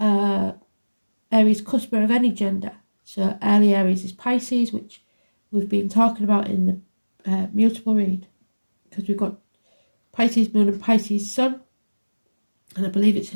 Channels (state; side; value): inverted; both; correlation -1.00